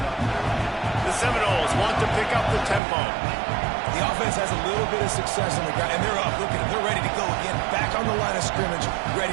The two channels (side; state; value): left; drops out; at 2.8 s